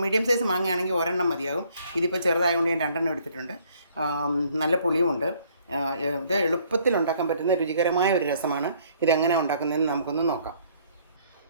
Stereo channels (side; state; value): both; inverted; correlation -0.63